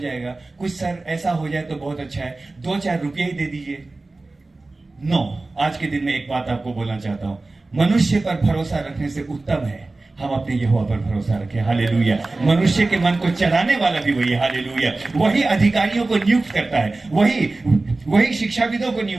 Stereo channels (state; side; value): quieter; left; 3.2 dB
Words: कुछ सर ऐसा हो जाए तो बहुत अच्छा है, 2-4 रुपये ही दे दीजिए, नो, आज के दिन में एक बात आपको बोलना चाहता हूं, मनुष्य पर भरोसा रखने से उत्तम है हम अपने यहोवा पर भरोसा रखें। हालेलुया। मनुष्य के मन को चलाने वाला भी वही है। हालेलुया। वही अधिकारियों को नियुक्त करता है, वही शिक्षाविदों को